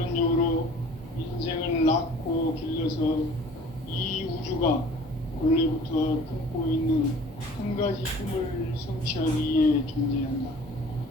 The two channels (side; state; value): both; normal; correlation 0.48